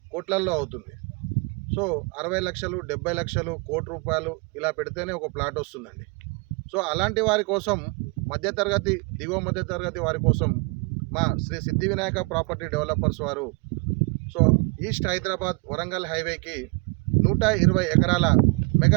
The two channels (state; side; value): quieter; left; 31.0 dB